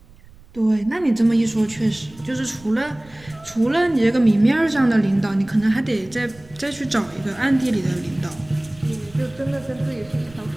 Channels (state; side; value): noise; right; rumble, 24 dB below the sound